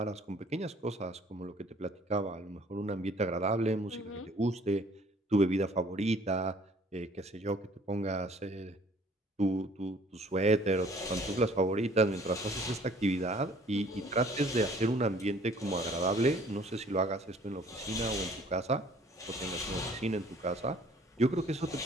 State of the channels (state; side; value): normal; both; correlation 0.56